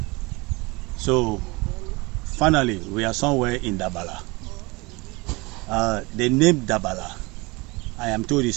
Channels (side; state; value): left; quieter; 25.0 dB